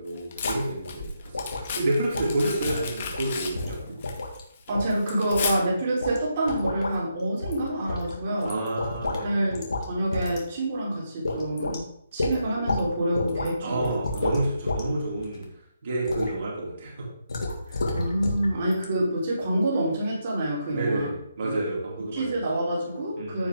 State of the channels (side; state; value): both; inverted; correlation -0.81